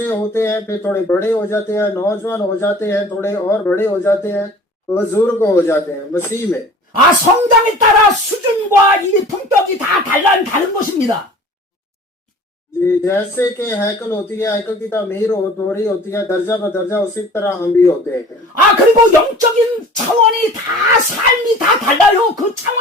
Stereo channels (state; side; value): normal; both; correlation 0.45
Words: होते हैं, फिर थोड़े बड़े हो जाते हैं, नौजवान हो जाते हैं, थोड़े और बड़े हो जाते हैं, बुजुर्ग हो जाते हैं मसीह में। 아, 성장에 따라 수준과 이 품격이 다 다른 것입니다. जी, जैसे कि हैकल होती है, हैकल की तामीर हो रही होती है दर्जा ब दर्जा, उसी तरह हम भी होते हैं। 아, 그리고 영적인 차원이 다 삶이 다 달라요. 그